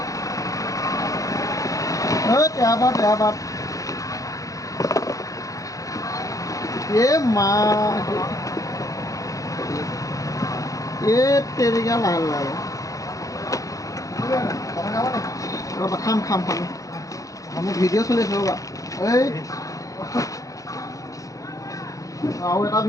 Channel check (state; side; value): late; right; 0.16 ms